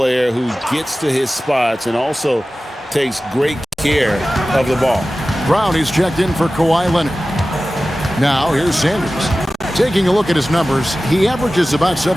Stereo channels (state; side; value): normal; both; correlation 0.96